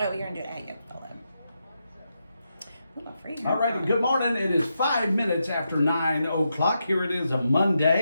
you're gonna do it. Yeah, follow. Ooh, I'm free. All right, good morning. It is 5 minutes after 9 o'clock. Here it is, a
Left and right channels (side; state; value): both; inverted; correlation -0.85